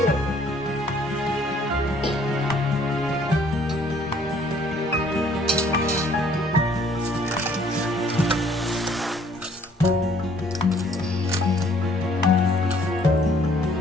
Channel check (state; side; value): normal; both; correlation 0.61